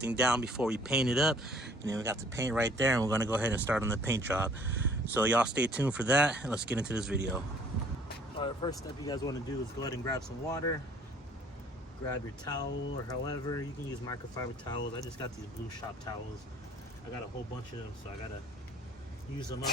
down before we paint it up. And then we got the paint right there, and we're gonna go ahead and start on the paint job. So y'all stay tuned for that, and let's get into this video. All right, first step you guys want to do is go ahead and grab some water. Grab your towel, or however you can use microfiber towels. I just got these blue shop towels. I got a whole bunch of them, so I gotta use them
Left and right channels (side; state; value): both; normal; correlation 0.56